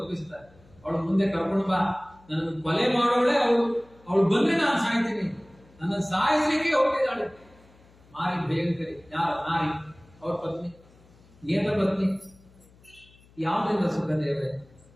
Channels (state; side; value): noise; left; hum, 27 dB below the sound